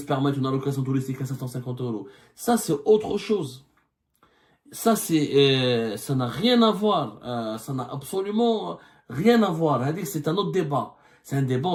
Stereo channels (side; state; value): both; identical; correlation 1.00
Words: permettre une allocation touristique à 750 euros? Ça, c'est autre chose. Ça, ça n'a rien à voir. Ça n'a absolument rien à voir. C'est un autre débat. C'est un débat